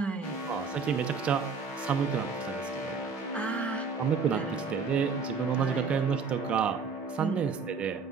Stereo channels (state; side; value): quieter; left; 5.1 dB